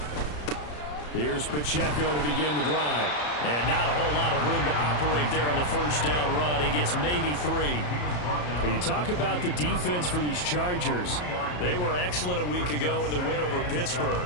Here's Pacheco to begin the drive. And not a whole lot of room to operate there on the first down run. He gets maybe 3. But you talk about the defense for these Chargers. They were excellent a week ago in the win over Pittsburgh.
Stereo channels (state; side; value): late; right; 34 ms